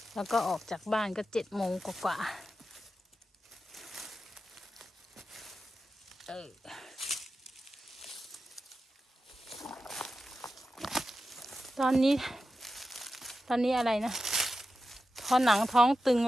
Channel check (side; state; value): both; normal; correlation 0.91